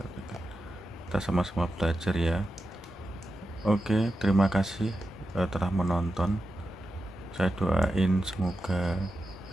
kita sama-sama belajar ya. Oke, terima kasih telah menonton. Saya doain semoga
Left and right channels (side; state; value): both; normal; correlation 0.90